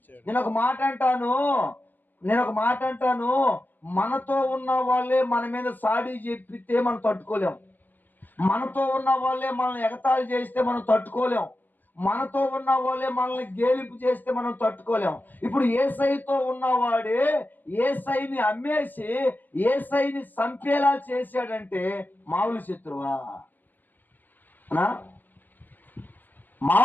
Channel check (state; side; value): late; right; 0.086 ms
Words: నేను ఒక మాట అంటాను, మనతో ఉన్న వాళ్ళే మన మీద సాడి చెప్పితే మనం తట్టుకోలేం, మనతో ఉన్న వాళ్ళే మనల్ని ఎగతాళి చేస్తే మనం తట్టుకోలేం, మనతో ఉన్న వాళ్ళే మనల్ని గేలింపు చేస్తే మనం తట్టుకోలేం. ఇప్పుడు యేసయ్యతో ఉన్నవాడే యేసయ్యని అమ్మేసి యేసయ్యని చంపేలా చేశాడంటే మామూలు శత్రువా?